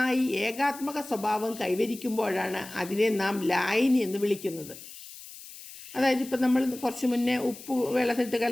ഏകാത്മക സ്വഭാവം കൈവരിക്കുമ്പോഴാണ് അതിനെ നാം ലായനി എന്ന് വിളിക്കുന്നത്. അതായത് ഇപ്പം നമ്മൾ കുറച്ച് മുന്നേ ഉപ്പ് വെള്ളത്തിലിട്ട്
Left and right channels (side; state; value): left; noise; hiss, 15 dB below the sound